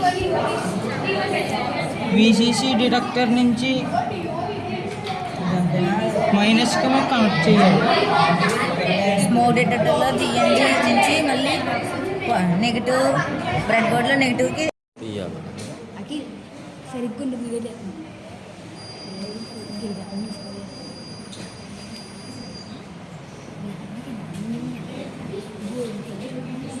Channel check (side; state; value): both; identical; correlation 1.00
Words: విసిసి డిటెక్టర్ నుంచి మైనస్కి కనెక్ట్ చేయాలి. స్మోక్ డిటెక్టర్లో జిఎండి నుంచి మళ్ళీ నెగిటివ్ బ్రెడ్ బోర్డ్లో నెగిటివ్కి సరిగ్గా